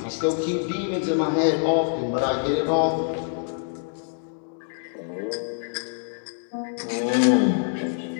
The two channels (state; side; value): silent; right; digital silence